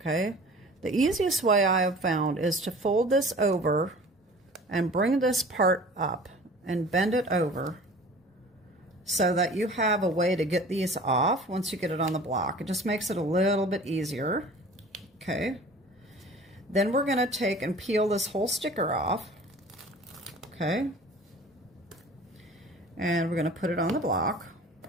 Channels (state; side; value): normal; both; correlation 0.44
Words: The easiest way I have found is to fold this over and bring this part up and bend it over so that you have a way to get these off once you get it on the block. It just makes it a little bit easier, okay? Then we're going to take and peel this whole sticker off, okay? And we're going to put it on the block.